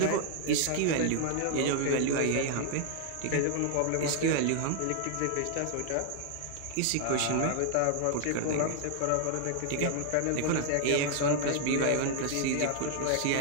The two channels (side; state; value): both; different; correlation 0.00